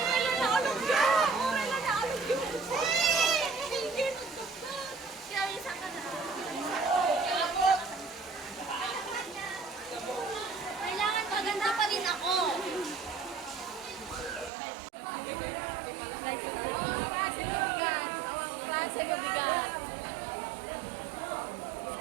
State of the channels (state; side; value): drops out; left; at 14.5 s